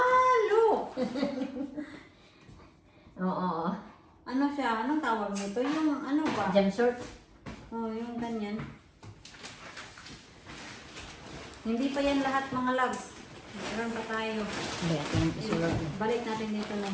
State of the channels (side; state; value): both; identical; correlation 1.00